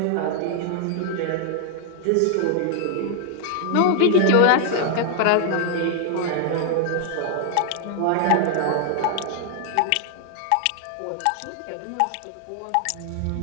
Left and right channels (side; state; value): both; different; correlation 0.00